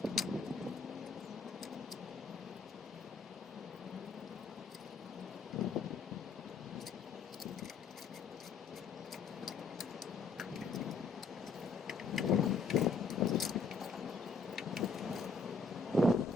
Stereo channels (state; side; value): quieter; right; 4.3 dB